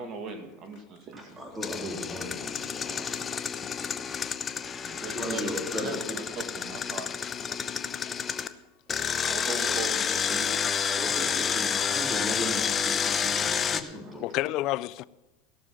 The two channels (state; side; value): quieter; right; 5.7 dB